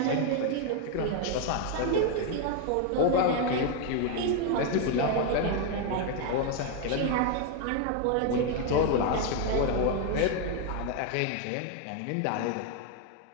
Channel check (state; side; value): different; both; correlation 0.01